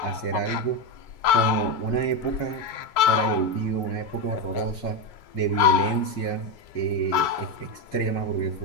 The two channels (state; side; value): late; right; 2.3 ms